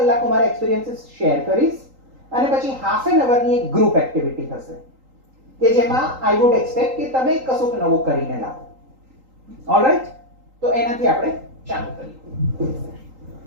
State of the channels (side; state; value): left; late; 3.8 ms